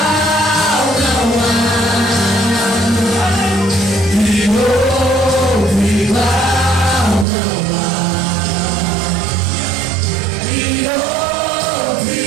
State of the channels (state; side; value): drops out; left; at 7.2 s